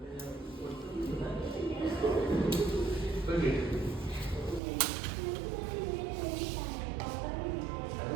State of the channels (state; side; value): drops out; left; at 4.6 s